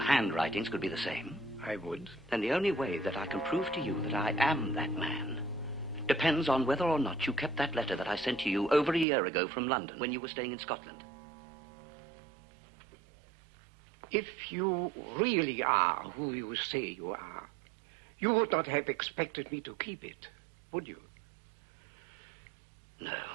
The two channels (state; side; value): drops out; left; at 9.1 s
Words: could be the same? I would. Then the only way that I can prove to you that I am that man depends on whether or not you kept that letter that I sent to you over a year ago from London when you were staying in Scotland. If you really are who you say you are, you would not have expected me to keep it, would you? No.